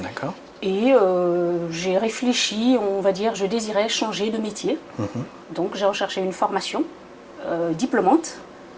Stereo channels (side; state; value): both; identical; correlation 1.00